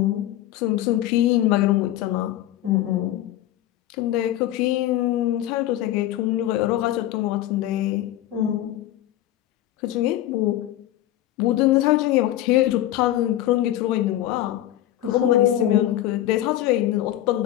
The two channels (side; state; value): right; quieter; 13.6 dB